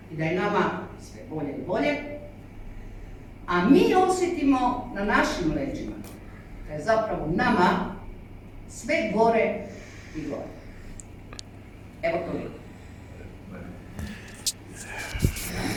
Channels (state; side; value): identical; both; correlation 1.00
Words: i da je nama sve bolje i bolje, a mi osjetimo na našim leđima da je zapravo nama sve gore i gore. Evo toliko.